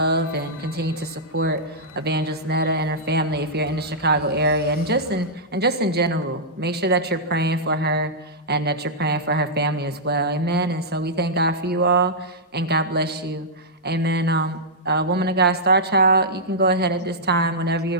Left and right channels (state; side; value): normal; both; correlation -0.11